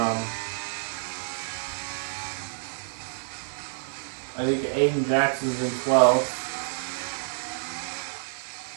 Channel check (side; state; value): left; silent; digital silence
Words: I think Aiden Jackson's in 12th.